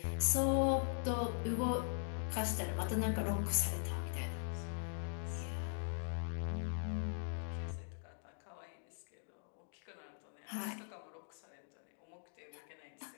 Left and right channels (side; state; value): right; silent; digital silence